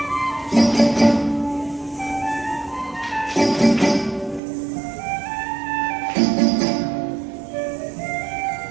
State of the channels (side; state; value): left; drops out; at 4.4 s